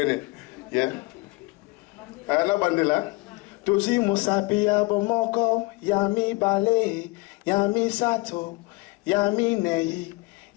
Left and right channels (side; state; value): right; quieter; 24.4 dB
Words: innit? Yeah? Ana bandela. Toji musapi abomoko, Yami bale, Yami sato, Yami nei.